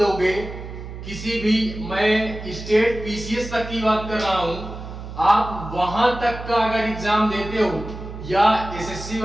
किसी भी, मैं स्टेट पीसीएस तक की बात कर रहा हूं, आप वहां तक का अगर एग्जाम देते हो या एसएससी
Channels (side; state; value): right; noise; hum, 10 dB below the sound